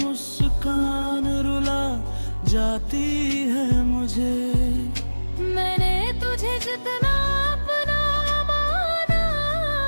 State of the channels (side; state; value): both; inverted; correlation -1.00